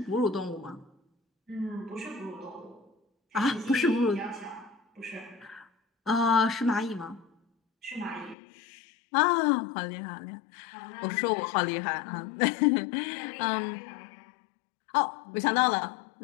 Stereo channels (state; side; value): drops out; right; at 8.3 s